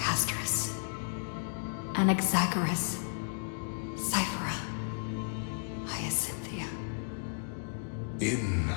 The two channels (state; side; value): silent; right; digital silence